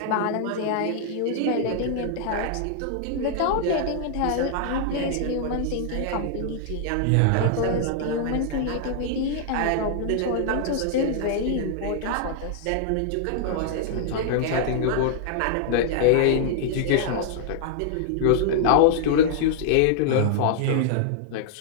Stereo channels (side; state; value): both; different; correlation -0.01